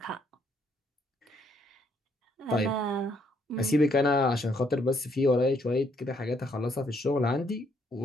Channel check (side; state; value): both; normal; correlation 0.70